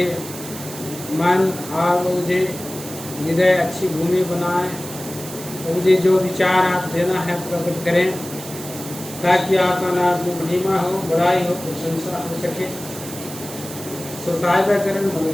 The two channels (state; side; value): noise; right; hiss, 12 dB below the sound